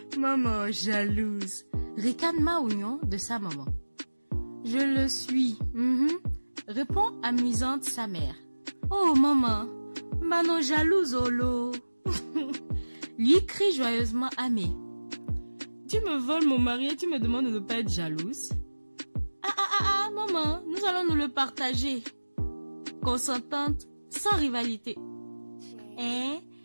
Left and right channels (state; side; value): inverted; both; correlation -1.00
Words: Maman jalouse, ricane Maounion de sa maman. Je le suis. répond amusante sa mère. Oh maman, maman jalouse Olo. Lui crie joyeusement Amé. Tu me voles mon mari et tu me demandes de ne pas être jalouse? Maman, nous allons nous le partager. Consentante, sans rivalité. Hein?